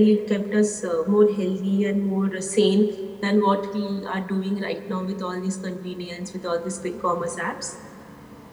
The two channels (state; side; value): identical; both; correlation 1.00